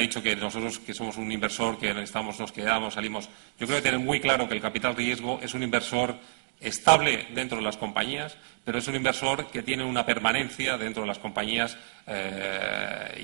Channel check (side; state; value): left; silent; digital silence